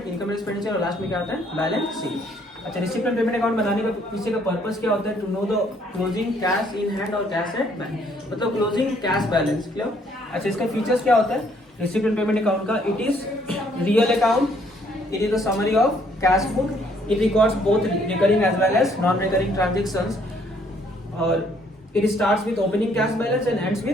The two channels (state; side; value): normal; both; correlation 0.66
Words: इनकम एक्सपेंडिचर, और लास्ट में क्या आता है, बैलेंस शीट। अच्छा, रिसिप्ट एंड पेमेंट अकाउंट बनाने का पीछे का पर्पस क्या होता है, to know the closing cash in hand और कैश एट बैंक, मतलब क्लोजिंग कैश बैलेंस, क्लियर। अच्छा, इसका फीचर्स क्या होता है रिसिप्ट एंड पेमेंट अकाउंट का, it is real account, it is the summary of cash book, it records both recurring as well as non recurring transactions, और it starts with opening cash balance and ends